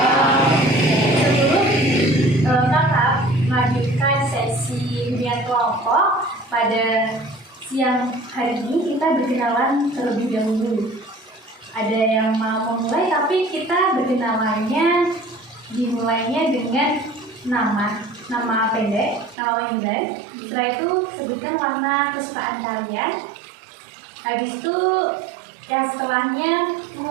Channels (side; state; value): left; drops out; at 19.4 s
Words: Sebelum Kakak melanjutkan sesi hunian kelompok pada siang hari ini, kita berkenalan terlebih dahulu. Ada yang mau memulai, tapi kita berkenalannya dimulainya dengan nama pendek, nama panggilan. Setelah itu sebutkan warna kesukaan kalian. Habis itu yang setelahnya